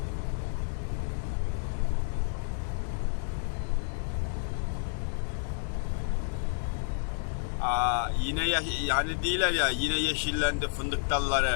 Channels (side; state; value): right; silent; 58 dB below the other